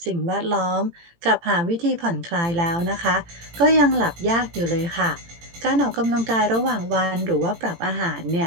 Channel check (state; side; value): late; left; 18 ms